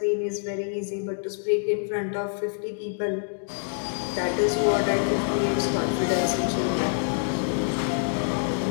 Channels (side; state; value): right; silent; digital silence